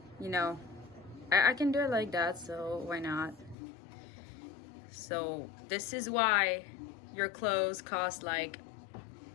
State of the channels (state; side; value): drops out; right; at 3.6 s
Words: you know, I can do it like that, so why not? So this is why your clothes cost like,